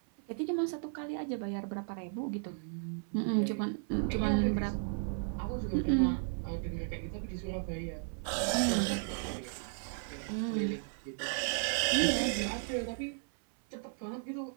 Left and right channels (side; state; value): left; silent; 55 dB below the other